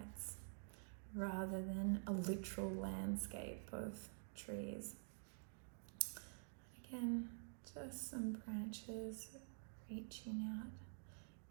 rather than a literal landscape of trees. Again, just some branches reaching out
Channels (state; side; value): silent; left; digital silence